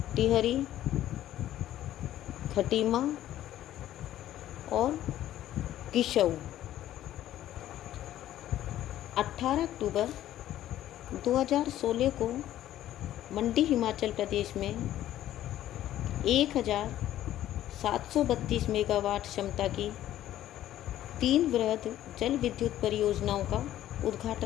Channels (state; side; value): quieter; right; 12.9 dB